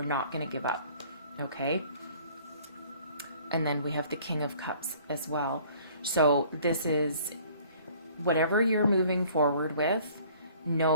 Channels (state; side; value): inverted; both; correlation -0.54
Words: not going to give up, okay? And then we have the King of Cups as well. So this is whatever you're moving forward with,